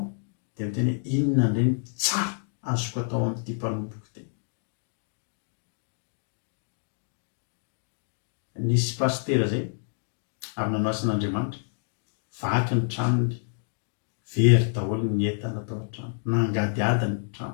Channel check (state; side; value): silent; right; digital silence